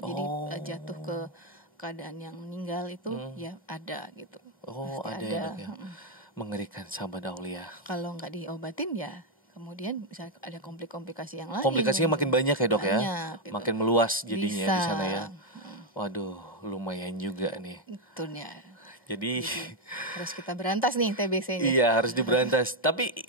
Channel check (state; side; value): normal; both; correlation 0.02